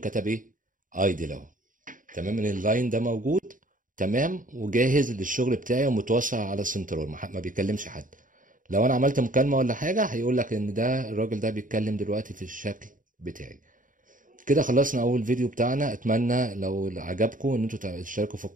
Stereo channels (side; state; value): left; late; 0.39 ms